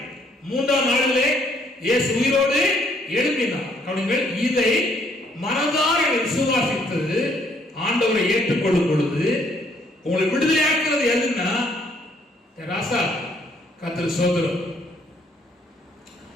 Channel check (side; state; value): both; normal; correlation 0.67